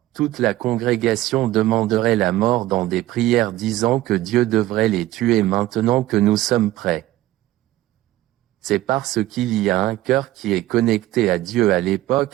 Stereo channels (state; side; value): quieter; left; 15.8 dB